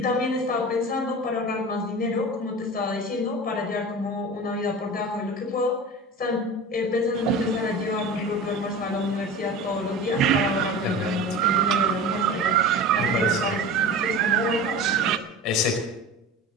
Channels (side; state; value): both; normal; correlation 0.33